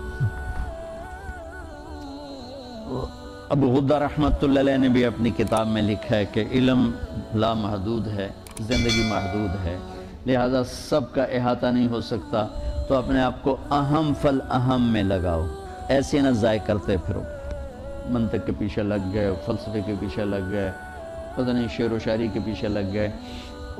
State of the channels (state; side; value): identical; both; correlation 1.00